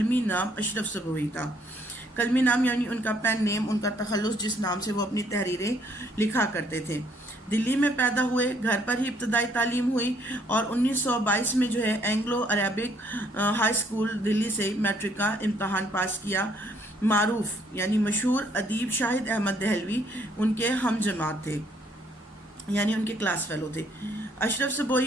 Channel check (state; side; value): normal; both; correlation 0.66